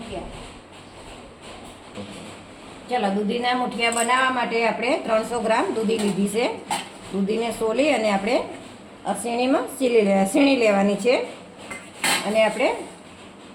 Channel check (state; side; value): identical; both; correlation 1.00